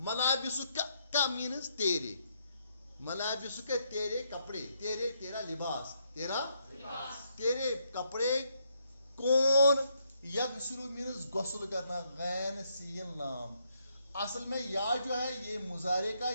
ملابس کا مینس تیرے ملابس کے تیرے کپڑے تیرا لباس تیرے کپڑے کون یغسل مینس غسل کرنا غین سین لام اصل میں یا جو ہے یہ مضارع کا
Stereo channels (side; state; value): both; inverted; correlation -0.75